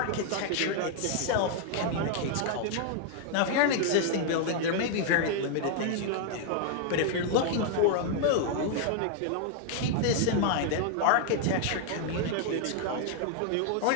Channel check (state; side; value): different; both; correlation 0.00